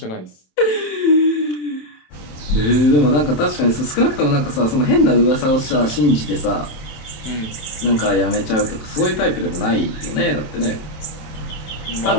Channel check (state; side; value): late; right; 27 ms